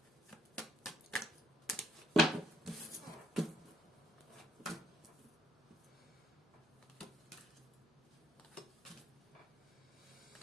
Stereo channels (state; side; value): normal; both; correlation 0.67